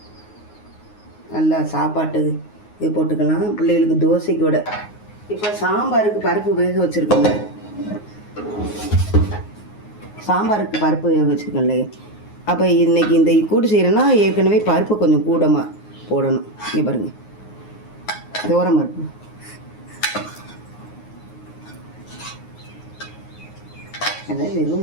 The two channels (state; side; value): late; right; 9.5 ms